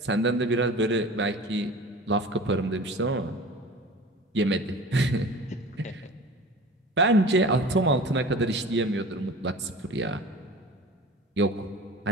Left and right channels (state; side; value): normal; both; correlation 0.39